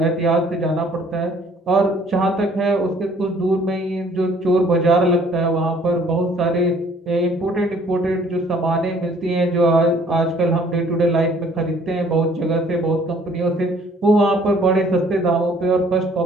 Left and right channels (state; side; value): normal; both; correlation 0.58